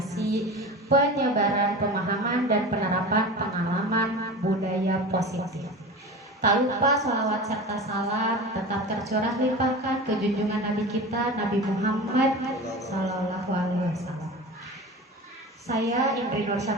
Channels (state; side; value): normal; both; correlation 0.32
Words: penyebaran pemahaman dan penerapan pengalaman budaya positif. Tak lupa sholawat serta salam tetap tercurah limpahkan ke junjungan Nabi kita, Nabi Muhammad Sallallahu Alaihi Wasallam. Saya Indri Nur